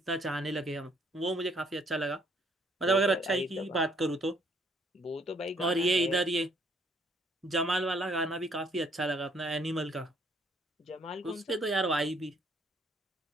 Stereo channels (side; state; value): both; normal; correlation 0.65